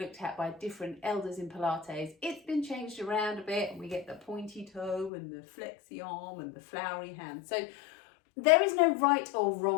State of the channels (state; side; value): drops out; right; at 5.1 s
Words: at by different elders in Pilates, it's been changed around a bit, and we get the pointy toe and the flexi arm and the flowery hand. So there is no right or